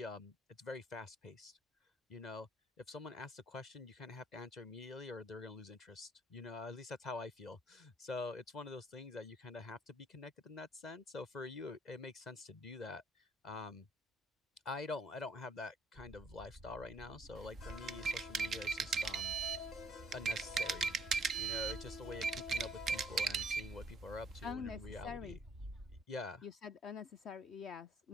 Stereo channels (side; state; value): both; normal; correlation 0.63